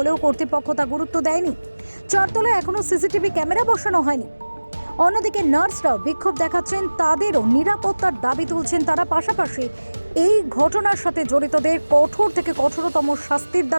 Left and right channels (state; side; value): inverted; both; correlation -1.00